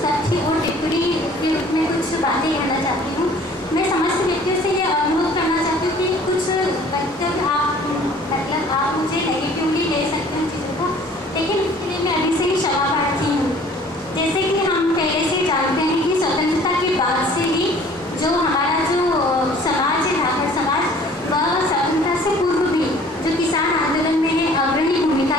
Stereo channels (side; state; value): both; normal; correlation 0.52